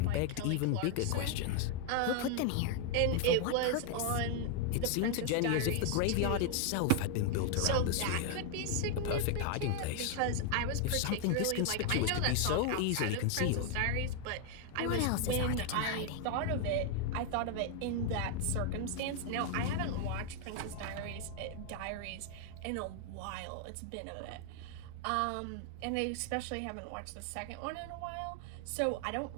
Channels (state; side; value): different; both; correlation 0.00